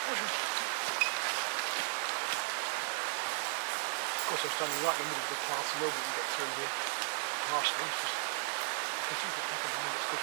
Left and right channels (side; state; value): left; silent; 54 dB below the other